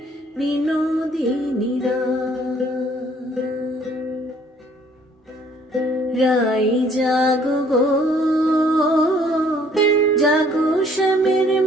বিনোদিনী রাই জাগো গো, জাগো শ্যামের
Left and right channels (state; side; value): normal; both; correlation 0.60